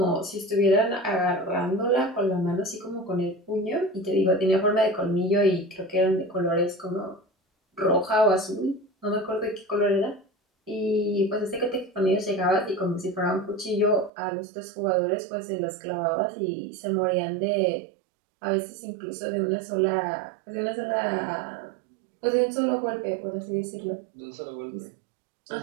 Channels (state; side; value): drops out; left; at 14.1 s